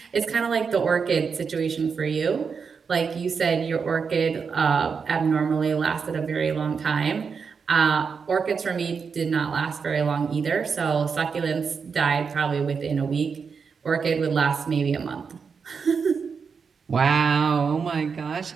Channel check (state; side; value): quieter; left; 5.8 dB